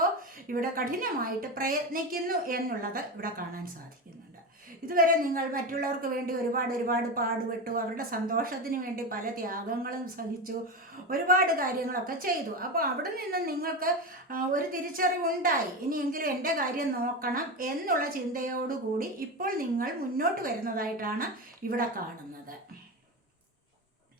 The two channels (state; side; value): normal; both; correlation 0.19